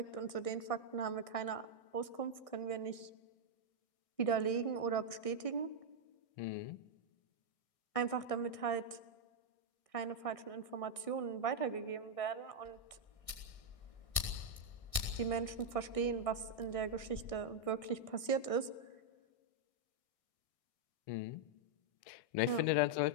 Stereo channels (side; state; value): right; late; 1.6 ms